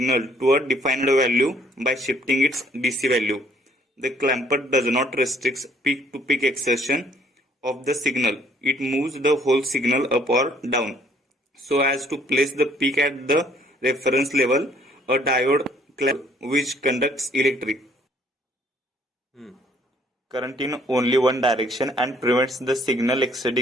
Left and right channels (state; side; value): normal; both; correlation 0.62